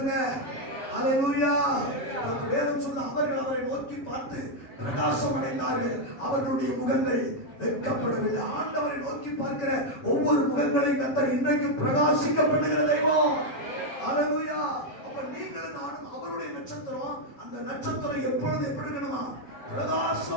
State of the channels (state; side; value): late; right; 7.7 ms